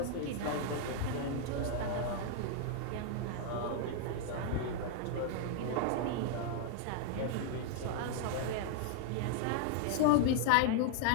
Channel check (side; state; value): both; different; correlation 0.00